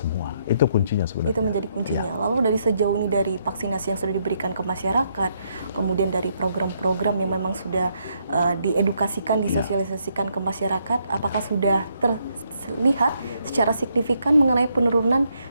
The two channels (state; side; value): inverted; both; correlation -0.75